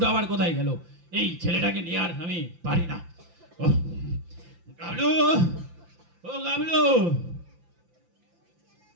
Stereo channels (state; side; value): late; left; 5.8 ms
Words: আবার কোথায় গেল? এই ছেলেটাকে নিয়ে আর আমি পারি না। গাবলু, ও গাবলু,